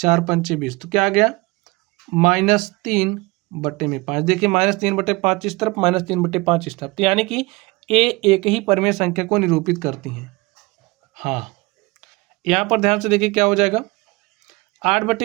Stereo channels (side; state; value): left; quieter; 23.8 dB